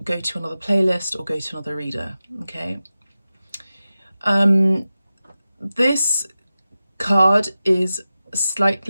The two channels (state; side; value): inverted; both; correlation -0.94